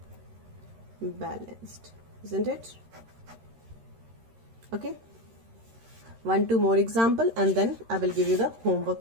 balanced, isn't it? Okay. 1-2 more example and then I will give you the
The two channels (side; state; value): left; late; 13 ms